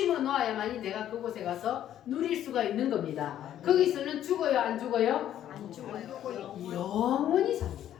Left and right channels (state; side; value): quieter; right; 11.3 dB